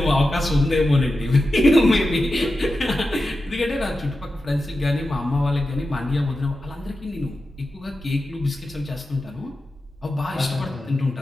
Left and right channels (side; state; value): both; normal; correlation 0.91